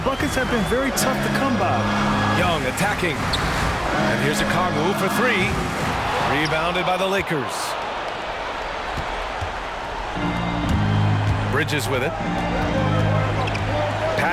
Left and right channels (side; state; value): both; identical; correlation 1.00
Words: buckets have been very tough to come by. Young attacking. And here's a Okongwu for 3. Rebounded by the Lakers. Bridges with it.